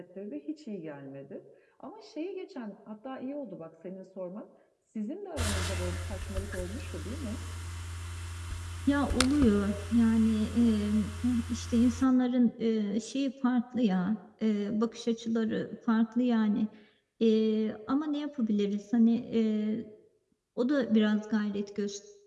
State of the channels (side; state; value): both; identical; correlation 1.00